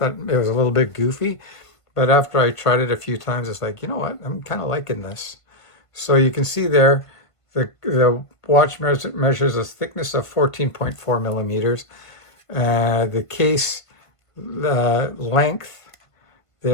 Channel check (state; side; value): late; right; 1.5 ms